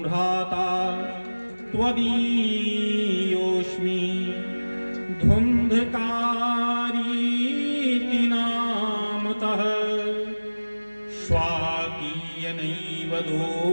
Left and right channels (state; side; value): inverted; both; correlation -1.00